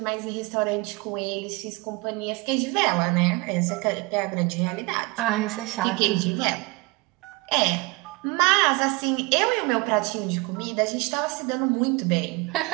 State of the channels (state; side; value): quieter; left; 25.0 dB